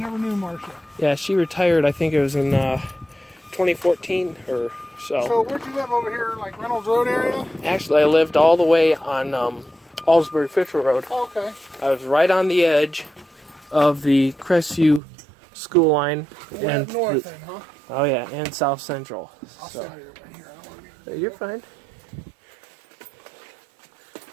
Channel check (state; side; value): drops out; left; at 15.0 s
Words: knew Marcia. Yeah, she retired, I think it was in 2014 or so. So where'd you live over here, like Reynolds Road area? Actually, I lived all the way on Alsbury Fisher Road. Oh, okay. I was right on the edge of the Crestview school line. Went up north then, huh? Oh yeah, and South Central. I'll So, stand right here. I don't want to be... you're fine.